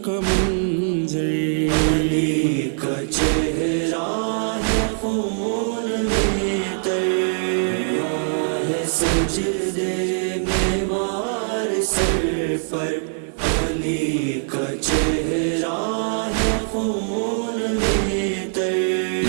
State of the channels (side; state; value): left; silent; digital silence